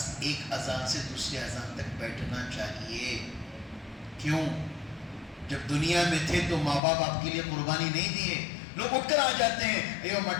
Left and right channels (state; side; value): drops out; right; at 6.8 s